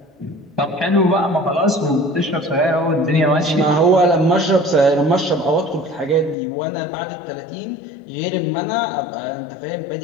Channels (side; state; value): right; drops out; at 6.4 s